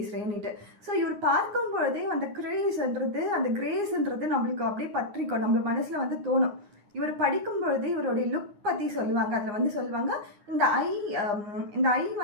ஸோ இவர் பார்க்கும் பொழுதே அந்த கிரேஸ்ன்றது நம்மளுக்கு அப்படியே பற்றிக்கும், நம்ம மனசில் தோணும். இவர் படிக்கும் பொழுது இவருடைய லுக் பற்றி சொல்லுவாங்க. அதில் சொல்லுவாங்க, இந்த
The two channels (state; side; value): late; left; 9.6 ms